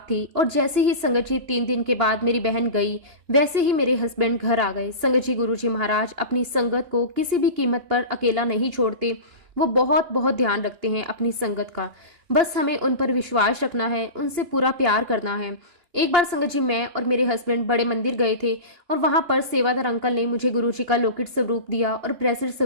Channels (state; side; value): late; left; 2.8 ms